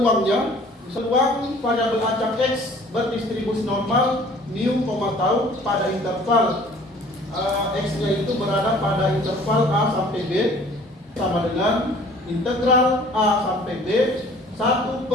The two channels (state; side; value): normal; both; correlation 0.52